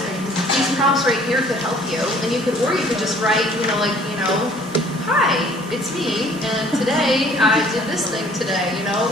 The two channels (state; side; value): normal; both; correlation 0.56